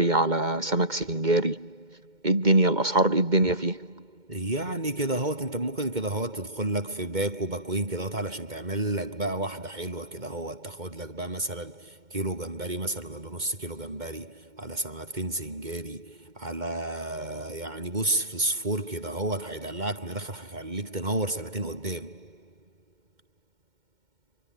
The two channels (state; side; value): late; left; 2.1 ms